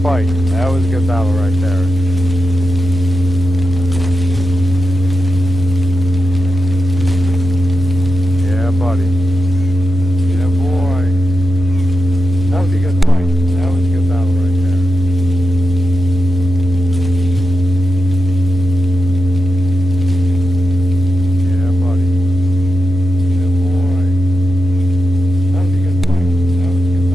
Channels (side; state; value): left; noise; hum, 17 dB below the sound